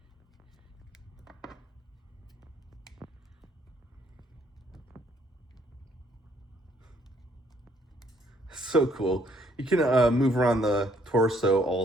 cool. You can move around the torso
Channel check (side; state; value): both; normal; correlation 0.67